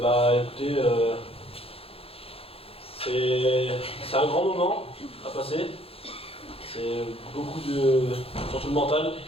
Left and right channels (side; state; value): right; late; 0.28 ms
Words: Écoutez, c'est un grand moment à passer. C'est beaucoup de... surtout le mental,